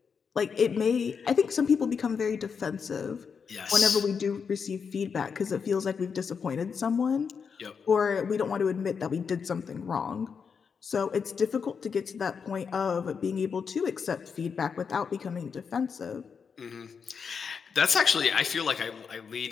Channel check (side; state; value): right; quieter; 6.1 dB